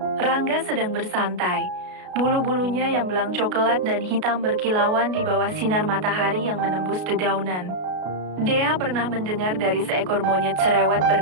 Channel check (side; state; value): left; late; 33 ms